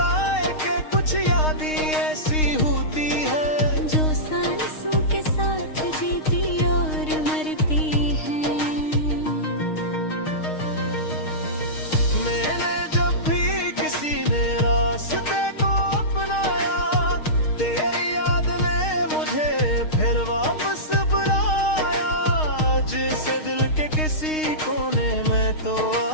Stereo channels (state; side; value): late; right; 6.5 ms